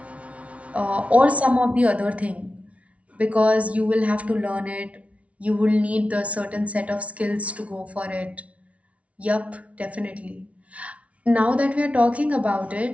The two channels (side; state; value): left; late; 0.065 ms